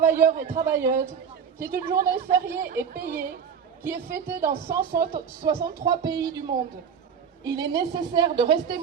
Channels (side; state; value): left; quieter; 7.1 dB